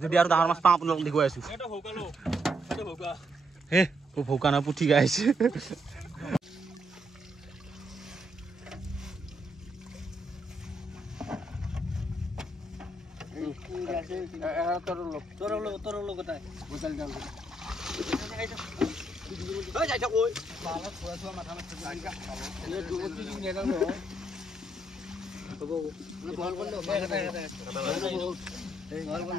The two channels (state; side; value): normal; both; correlation 0.76